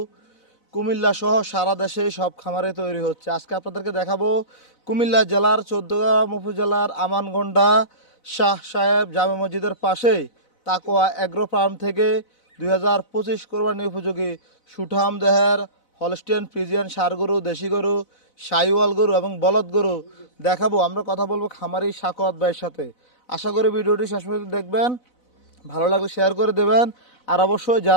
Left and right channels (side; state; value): right; late; 4.0 ms